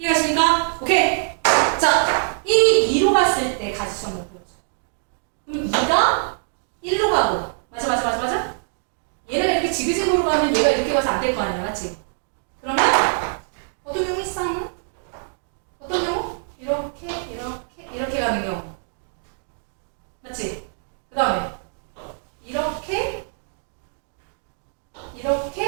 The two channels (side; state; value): left; silent; digital silence